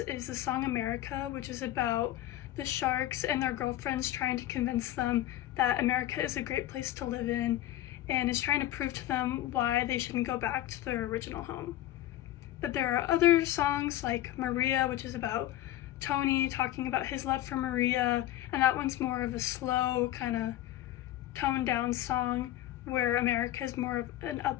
the song America, which is about the Sharks and their girlfriends trying to convince them that America is a great place to live in and is trying to prove to them why they shouldn't go back to their original home. But there are other songs like Maria, which is about Tony talking about his love for Maria, and that one's more of a slow, kind of toned down song, where America is more of an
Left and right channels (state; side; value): quieter; right; 14.1 dB